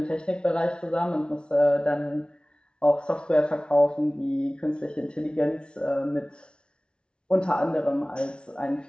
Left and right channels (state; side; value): late; right; 0.056 ms